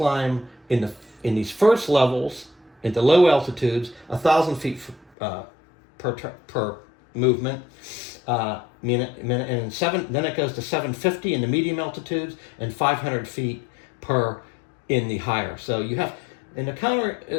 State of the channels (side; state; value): right; drops out; at 5.1 s